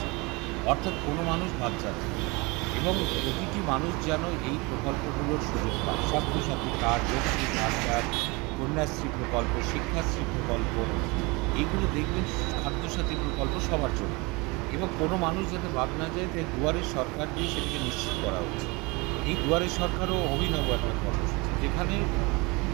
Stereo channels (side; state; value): left; quieter; 26.3 dB